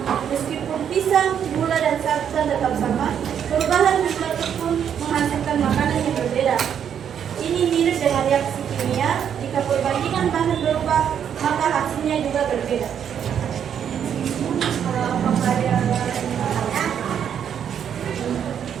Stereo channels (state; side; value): quieter; left; 8.6 dB